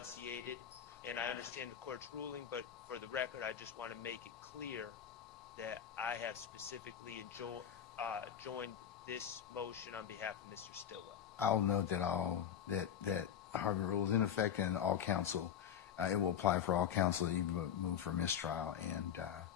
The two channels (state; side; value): quieter; right; 9.1 dB